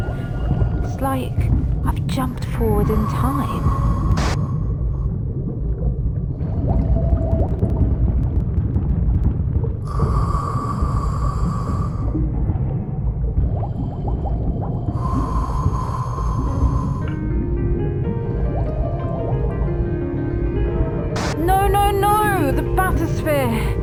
It's like I've jumped forward in time. No! The bathysphere!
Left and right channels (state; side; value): identical; both; correlation 1.00